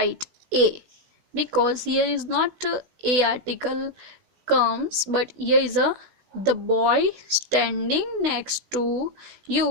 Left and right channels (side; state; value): left; late; 16 ms